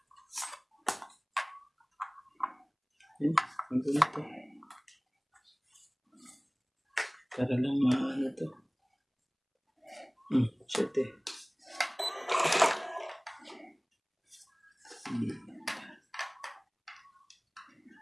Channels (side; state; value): both; identical; correlation 1.00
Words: Ang gulo to. Para lang maano to. Shit eh.